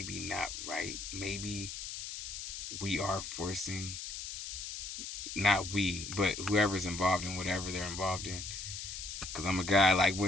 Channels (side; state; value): left; noise; hiss, 7 dB below the sound